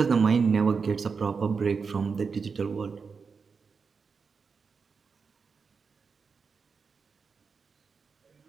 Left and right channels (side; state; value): left; quieter; 5.3 dB